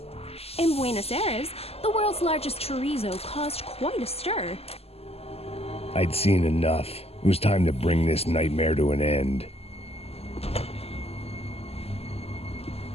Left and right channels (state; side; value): late; right; 0.29 ms